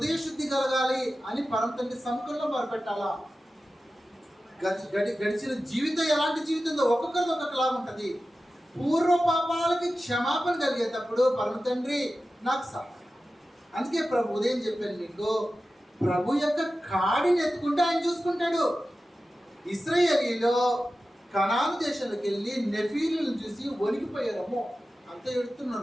శుద్ధి కలగాలి అని పరమ తండ్రి సముఖంలో మొరపెట్టాలా. గడిచిన జీవితం ఎలాంటి జీవితంలో ఒక్కొక్కరిది ఒక్కొక్కలాగా ఉంటుంది. పూర్వ పాపాలకి క్షమాపణ కలిగేటప్పుడు పరమ తండ్రి నాకు సహాయం. అందుకే ప్రభు ఉదయం చెప్పాను మీకు, ప్రభు యొక్క కాడిని ఎత్తుకుంటే ఆయన చూసుకుంటాడు. ఇశ్రాయేలీలో కనాను దేశంలోకి వెళ్ళి నెఫీలను చూసి వణికిపోయారమ్మో, అంత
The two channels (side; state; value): both; normal; correlation 0.94